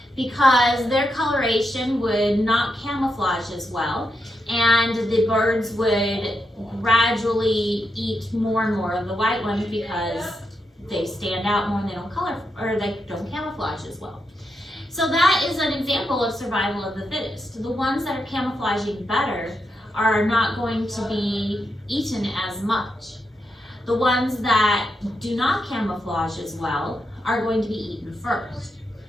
because their coloration would not camouflage as well, and the birds would gradually eat more and more of the white ones because they stand out more and they don't color, or they don't camouflage as well. So that is an example of survival of the fittest. The ones that are camouflaging better are not going to be eaten as much. The ones that do not camouflage as well are going to be eaten first.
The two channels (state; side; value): normal; both; correlation 0.84